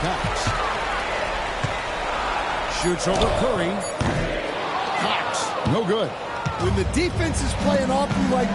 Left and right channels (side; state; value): both; identical; correlation 1.00